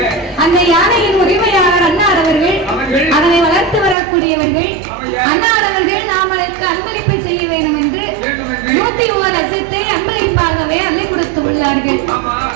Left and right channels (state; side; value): drops out; left; at 4.0 s